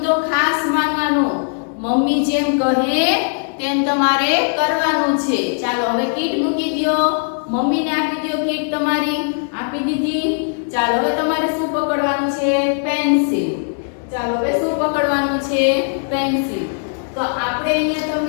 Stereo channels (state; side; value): silent; right; 67 dB below the other